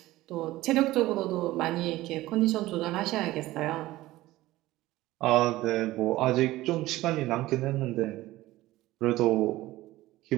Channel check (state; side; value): quieter; left; 17.2 dB